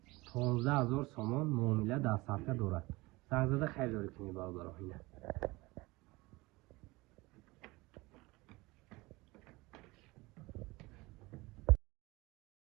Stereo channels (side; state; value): left; quieter; 22.1 dB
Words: 15000 سومان معامله دستافکه دارد. زنگ زده خیلی داری کنی برادرو. اینه